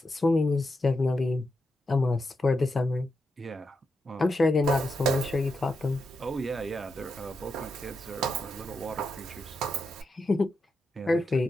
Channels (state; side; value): normal; both; correlation 0.85